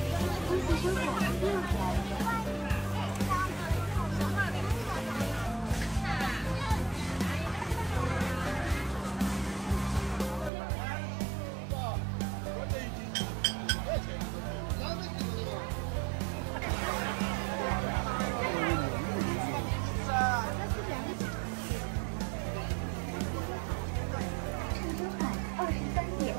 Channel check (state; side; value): drops out; left; at 10.5 s